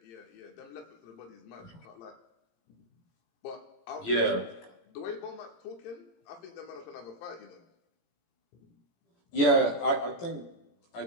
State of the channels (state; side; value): late; right; 17 ms